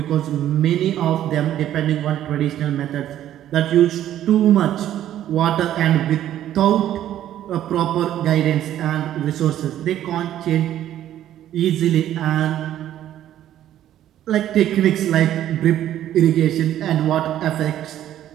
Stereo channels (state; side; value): quieter; left; 11.9 dB